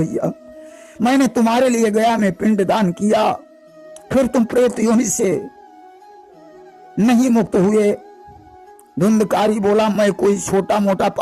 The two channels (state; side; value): identical; both; correlation 1.00